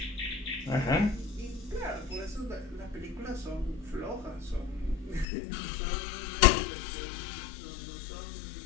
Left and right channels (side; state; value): right; drops out; at 5.2 s